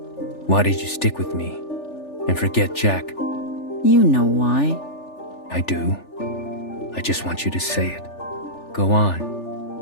why did you stick with me and forget Jack? You know why. I do. I just want you to say it. Go on.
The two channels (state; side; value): late; right; 3.4 ms